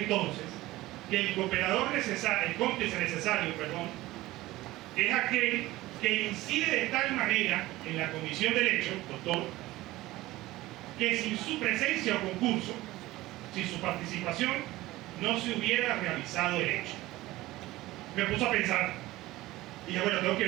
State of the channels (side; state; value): left; quieter; 17.8 dB